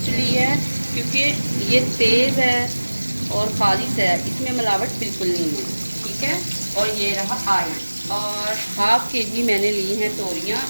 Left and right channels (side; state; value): both; inverted; correlation -1.00